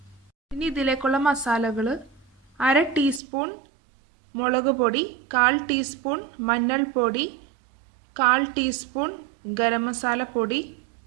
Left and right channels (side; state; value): left; drops out; at 3.2 s